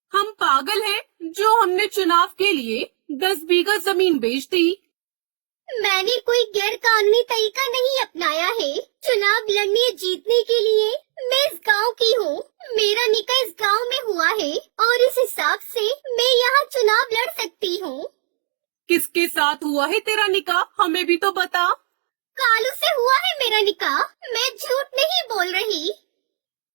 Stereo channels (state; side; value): silent; left; digital silence